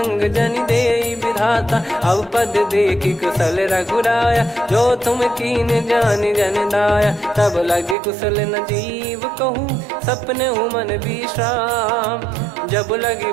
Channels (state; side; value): drops out; left; at 8.0 s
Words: जन दे विधाता अब पद देखी कुशल रघुराया जो तुम कीन जान जन दाया तब लगे कुशल न जीव कहूँ सपने मन विश्राम जब लगी